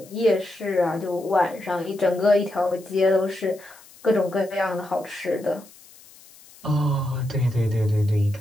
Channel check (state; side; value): noise; left; hiss, 23 dB below the sound